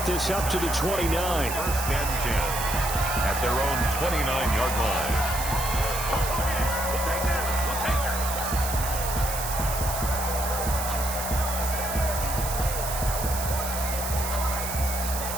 this up to the 29. First and 10 at their own 29-yard line.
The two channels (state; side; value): noise; right; hiss, 6 dB below the sound